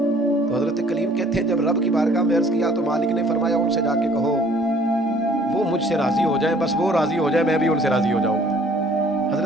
تو حضرت کلیم کہتے ہیں جب رب کی بارگاہ میں عرض کیا تو مالک نے فرمایا ان سے جا کے کہو وہ مجھ سے راضی ہو جائیں, بس وہ راضی ہو جائے میں بھی ان سے راضی ہو جاؤں گا.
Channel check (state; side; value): normal; both; correlation 0.56